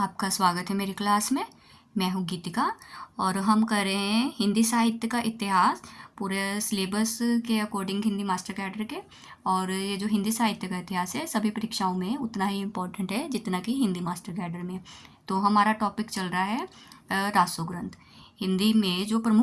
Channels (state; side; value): identical; both; correlation 1.00